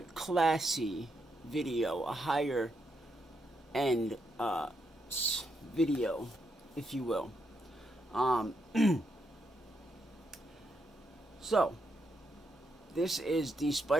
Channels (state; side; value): normal; both; correlation 0.80